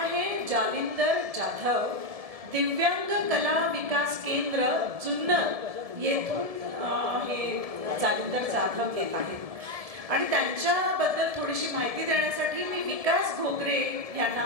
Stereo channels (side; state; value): left; late; 1.7 ms